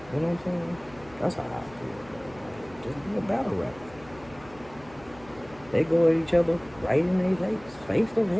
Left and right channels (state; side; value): noise; left; hum, 22 dB below the sound